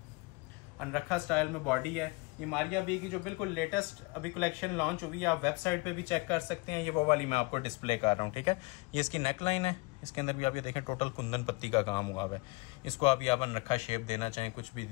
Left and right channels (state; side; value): quieter; right; 26.7 dB